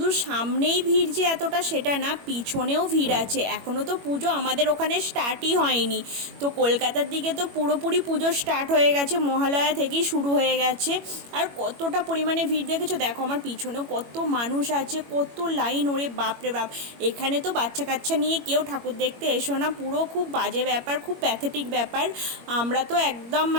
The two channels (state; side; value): late; left; 21 ms